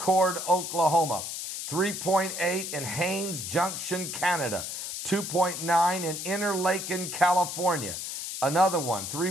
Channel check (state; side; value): noise; left; hiss, 6 dB below the sound